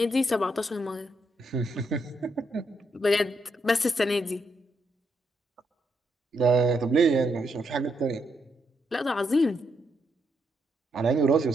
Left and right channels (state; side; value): normal; both; correlation 0.79